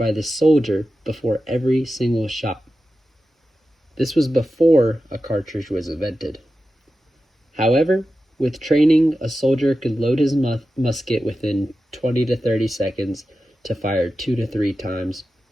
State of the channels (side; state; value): both; normal; correlation 0.92